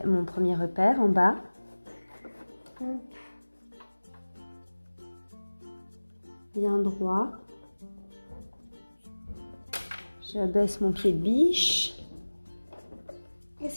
mon premier repère en bas. Bien droit. J'abaisse mon pied de biche. Et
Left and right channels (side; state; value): both; inverted; correlation -1.00